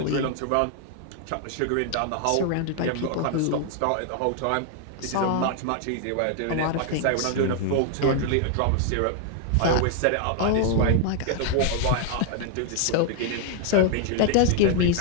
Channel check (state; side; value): different; both; correlation 0.00